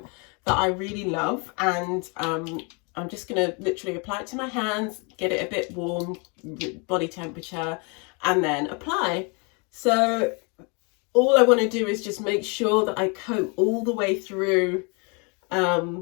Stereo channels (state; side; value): quieter; right; 33.0 dB